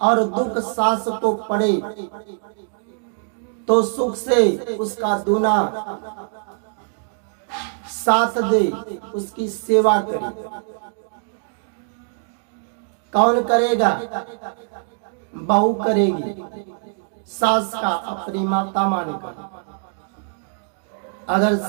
और दुख सास को पड़े तो सुख से उसका दूना साथ दे, उसकी सेवा करे। कौन करेगा? बहू करेगी, सास का अपनी माता मानेगा। अगर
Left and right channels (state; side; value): silent; left; 60 dB below the other